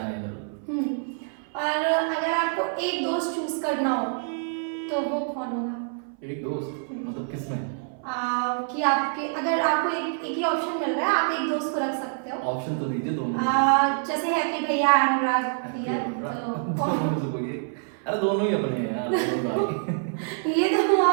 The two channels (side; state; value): left; silent; 58 dB below the other